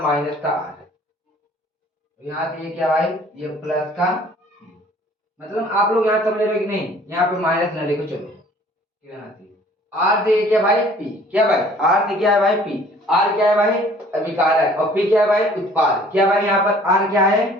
का आर। यहाँ से ये क्या भाई, ये प्लस का, मतलब आप लोग यहाँ समझ रहे हो कि नहीं, यहाँ पे माइनस न लिखो, चलो यहाँ से आर से क्या भाई पी। क्या भाई, आर से क्या है भाई पी। आर क्या है भाई, अभिकारक, और पी क्या है भाई, उत्पाद। क्या भाई यहाँ पर आर क्या है,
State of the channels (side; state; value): both; normal; correlation 0.54